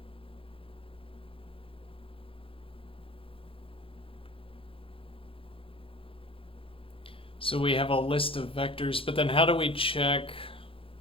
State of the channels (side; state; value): right; late; 0.26 ms